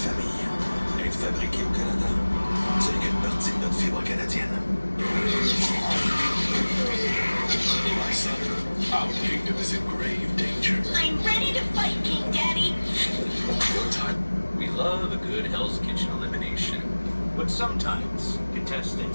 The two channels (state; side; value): inverted; both; correlation -1.00